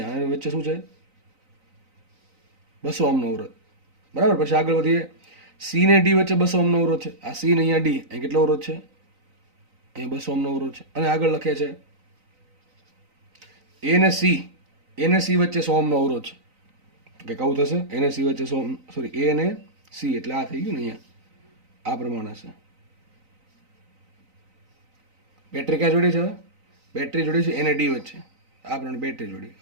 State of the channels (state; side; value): late; left; 3.9 ms